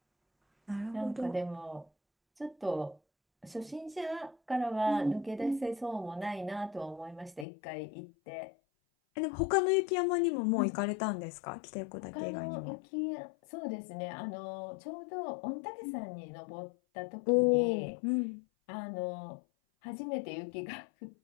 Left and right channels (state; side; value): drops out; right; at 7.5 s